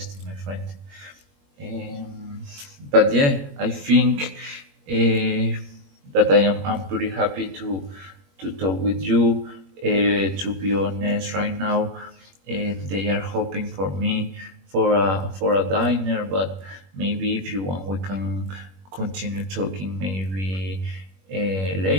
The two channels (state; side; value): late; left; 21 ms